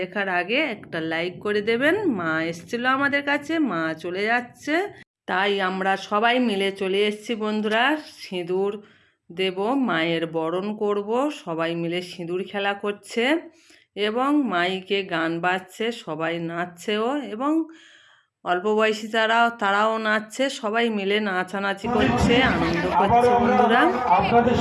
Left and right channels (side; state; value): both; identical; correlation 1.00